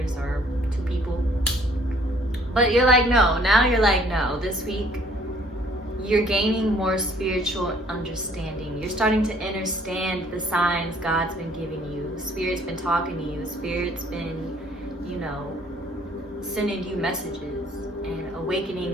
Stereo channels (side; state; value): both; normal; correlation 0.60